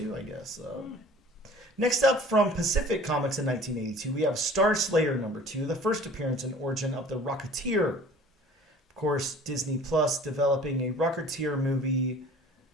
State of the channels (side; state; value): both; normal; correlation 0.47